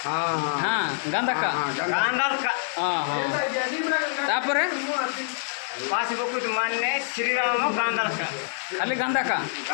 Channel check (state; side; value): silent; right; digital silence